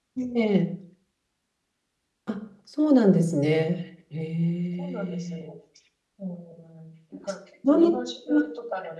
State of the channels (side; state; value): both; identical; correlation 1.00